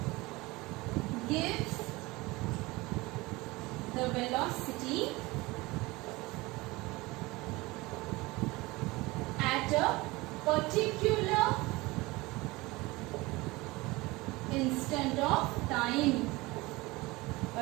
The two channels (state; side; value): quieter; left; 21.9 dB